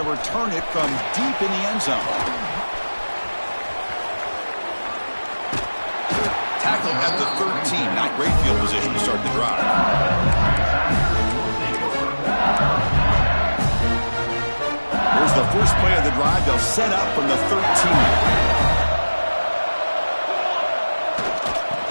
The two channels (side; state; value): both; inverted; correlation -1.00